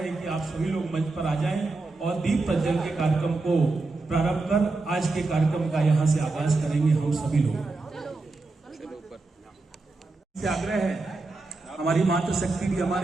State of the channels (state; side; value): quieter; left; 3.5 dB